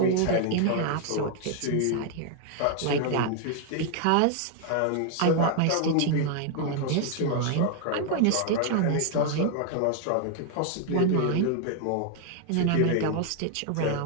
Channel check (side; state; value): both; different; correlation 0.00